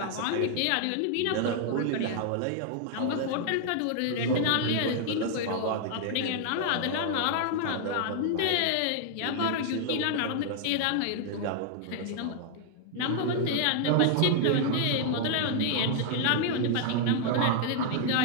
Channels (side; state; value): both; different; correlation 0.00